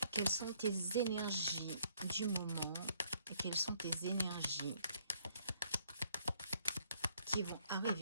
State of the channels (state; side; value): inverted; both; correlation -0.67